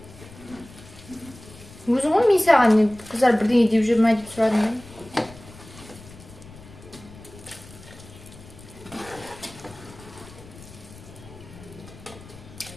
Өзің ғой мен саған қыздар бірдеңе деп жүр ма деп сұрадым мен.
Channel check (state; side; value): noise; left; rumble, 19 dB below the sound